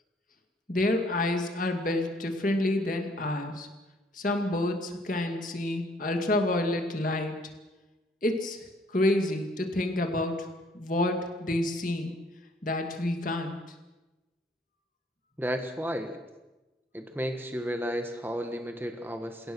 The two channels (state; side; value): normal; both; correlation 0.63